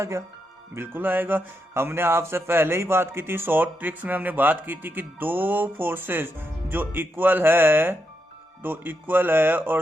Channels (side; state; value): both; normal; correlation 0.83